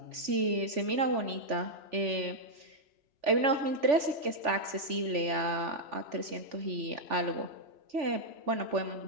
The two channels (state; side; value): late; left; 3.4 ms